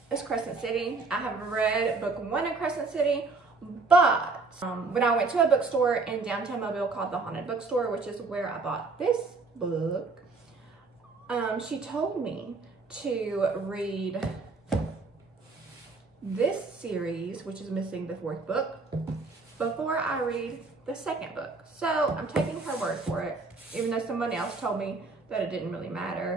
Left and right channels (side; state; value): left; quieter; 3.9 dB